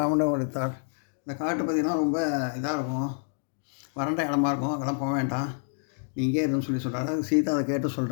உரைத்தாள். இந்த காட்டு பகுதியெலாம் ரொம்ப இதாக இருக்கும், வறண்ட இடமா இருக்கும், அங்கெல்லாம் போக வேண்டாம், நீ இங்கே இருன்னு சொல்கிறாரு. சீதா அதை கேட்டு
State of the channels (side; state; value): right; silent; digital silence